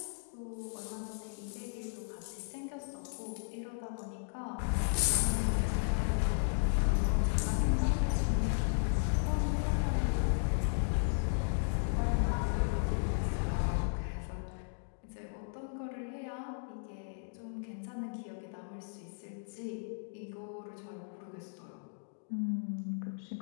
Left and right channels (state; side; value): silent; right; digital silence